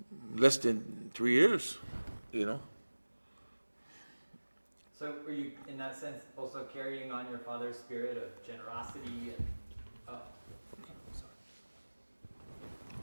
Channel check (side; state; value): both; inverted; correlation -1.00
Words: Less than 3 years, you know. So were you, in that sense, also carrying on your father's spirit of generosity?